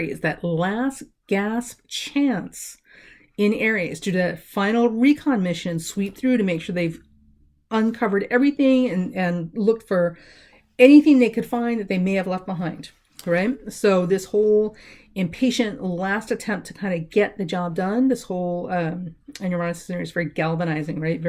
that last gasp chance in Aries to that final recon mission, sweep through to make sure they've uncovered everything and looked for anything they could find that they may have left behind, right? So this whole impatient last attempt to kind of get the job done, this whole, and Uranus is very galvanizing, right?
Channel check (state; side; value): identical; both; correlation 1.00